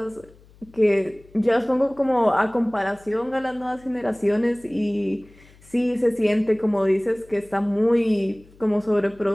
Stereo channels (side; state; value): left; noise; hum, 26 dB below the sound